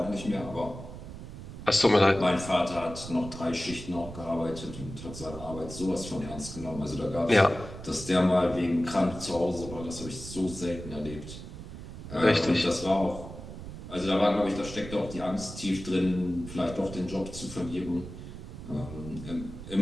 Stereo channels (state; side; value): noise; right; rumble, 11 dB below the sound